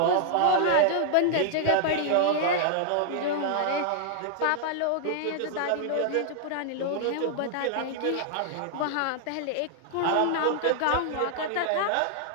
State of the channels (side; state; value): both; different; correlation -0.01